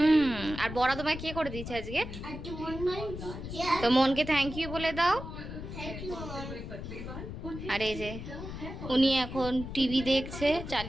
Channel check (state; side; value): noise; left; rumble, 9 dB below the sound